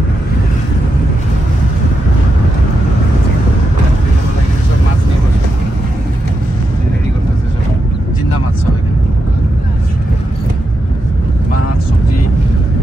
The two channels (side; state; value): both; normal; correlation 0.85